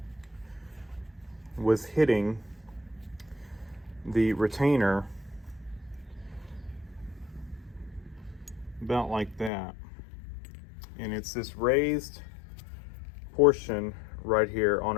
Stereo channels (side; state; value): right; drops out; at 9.5 s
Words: was hitting the retainer about like that, and it's this raised portion right here on